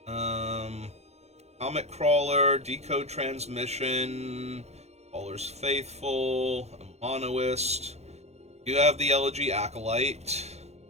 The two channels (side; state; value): left; late; 0.31 ms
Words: Comet Crawler, Decode Transmission, Caller's Faithful, a Monoist. You have the Elegy Acolyte.